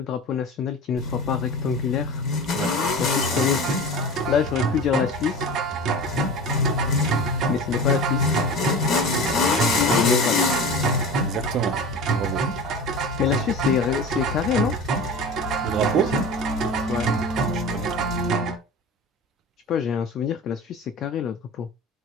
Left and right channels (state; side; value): normal; both; correlation 0.33